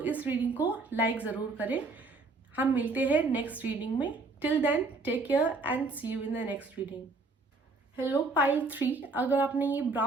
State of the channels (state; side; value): quieter; left; 3.6 dB